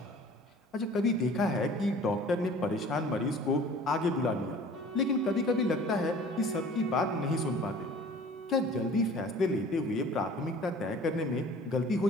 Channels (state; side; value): normal; both; correlation 0.47